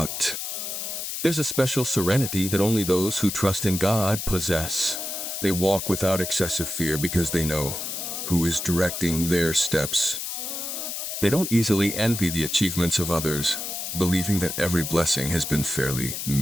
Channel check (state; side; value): noise; left; hiss, 5 dB below the sound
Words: There's a special serenity that only those who trust in God possess. They walk without excessive fear because they know who is directing their steps. They don't easily envy the achievements of others, believing that every blessing has been fairly